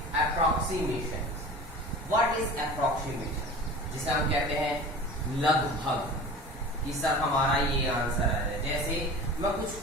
approximations. What is approximation? जिसे हम कहते हैं लगभग, कि सर हमारा ये आंसर है। जैसे मैं कुछ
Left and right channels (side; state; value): both; normal; correlation 0.38